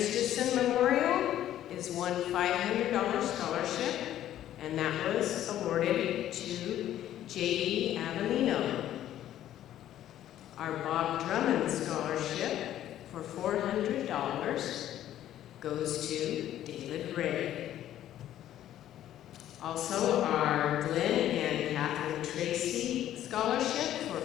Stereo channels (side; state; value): right; quieter; 12.2 dB